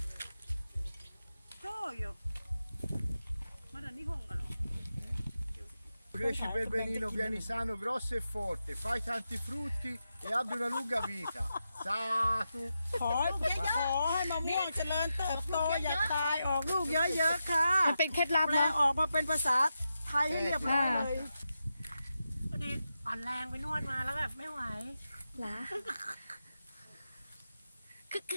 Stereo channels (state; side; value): inverted; both; correlation -0.88